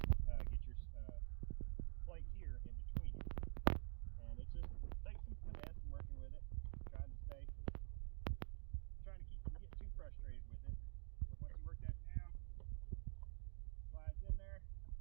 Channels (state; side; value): silent; left; digital silence